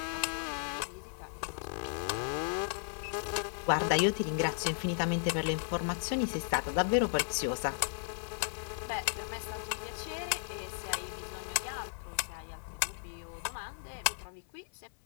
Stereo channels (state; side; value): silent; right; 54 dB below the other